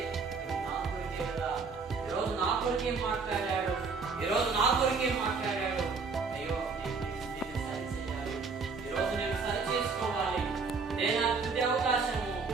కొరకే మాట్లాడాడు, ఈరోజు నా కొరకే మాట్లాడాడు. అయ్యో నేను సరి చేయాలి, ఈరోజు నేను సరి చేసుకోవాలి. ఇదే నా తుది అవకాశము,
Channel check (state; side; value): quieter; left; 4.8 dB